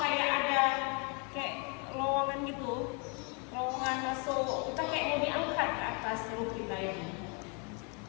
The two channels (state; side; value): quieter; right; 35.3 dB